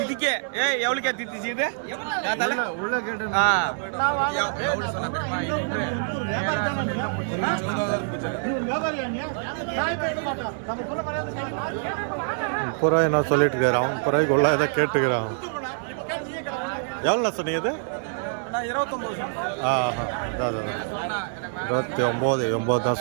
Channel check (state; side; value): silent; left; digital silence